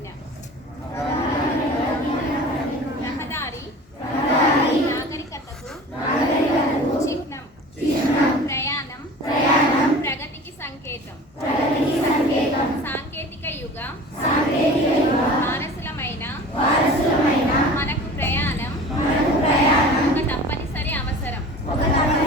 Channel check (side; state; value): both; normal; correlation 0.40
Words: రహదారి నాగరికతకు చిహ్నం. ప్రయాణం ప్రగతికి సంకేతం. సాంకేతిక యుగ వారసులమైన మనకు ప్రయాణం ఒక తప్పనిసరి అవసరం.